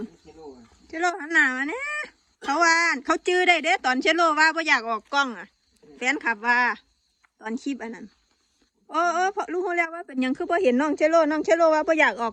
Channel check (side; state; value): both; identical; correlation 1.00